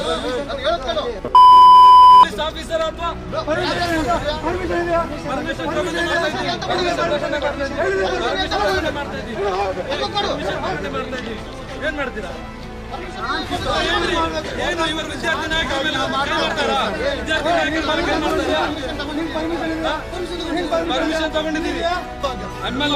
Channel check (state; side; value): identical; both; correlation 1.00